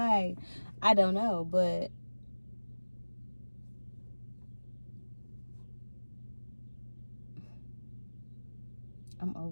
I don't know, but I'm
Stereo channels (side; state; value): both; inverted; correlation -1.00